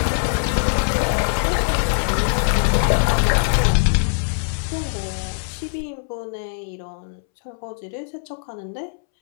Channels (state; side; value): silent; right; 64 dB below the other